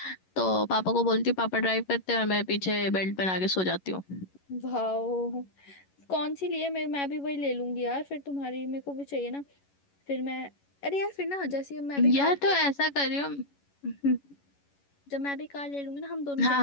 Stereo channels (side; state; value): right; late; 11 ms